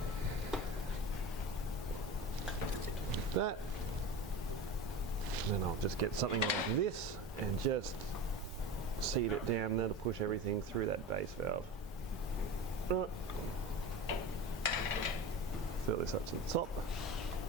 That. And then I'll just get something like this and just seat it down. That'll push everything through that base valve. Right. Fill this up to the top.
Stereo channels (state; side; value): normal; both; correlation 0.30